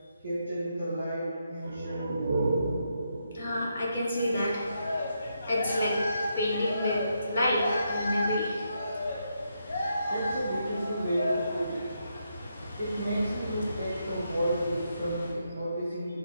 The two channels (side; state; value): both; inverted; correlation -0.80